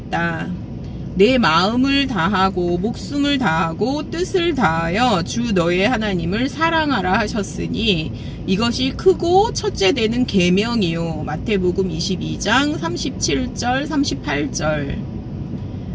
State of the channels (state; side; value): identical; both; correlation 1.00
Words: 내 마음을 다하고 목숨을 다하고 뜻을 다하여 주 너의 하나님을 사랑하라 하셨으니 이것이 크고 첫째 되는 계명이요. 마태복음 22장 37절 38절.